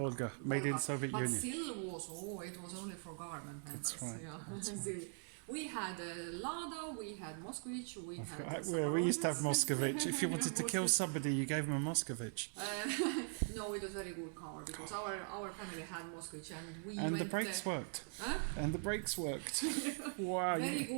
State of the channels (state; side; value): silent; left; 50 dB below the other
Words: made in Soviet but Union. ZIL was only for government members. That's right. Yeah. ZIL. We had Lada, we had Moskvich, we had. We used to have Moscovich. If you wanted to kill somebody, you gave them a Moscovich. No, it was a very good car because our family had Moskvich and we And went. the brakes worked. Huh? And the brakes worked. Wow. Very